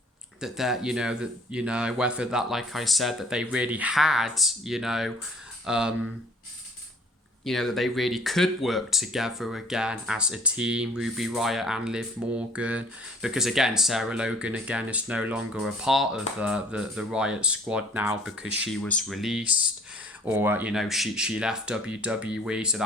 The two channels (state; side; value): normal; both; correlation 0.54